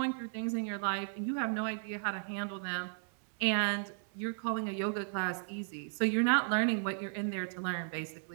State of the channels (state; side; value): silent; left; 55 dB below the other